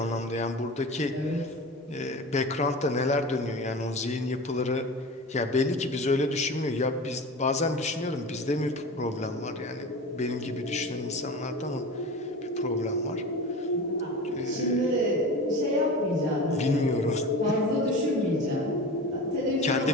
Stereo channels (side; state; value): both; normal; correlation 0.32